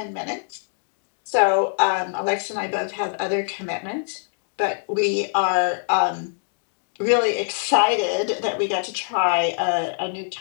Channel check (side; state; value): right; silent; digital silence